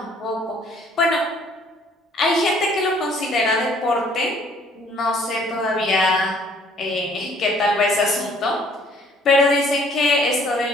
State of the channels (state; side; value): normal; both; correlation 0.59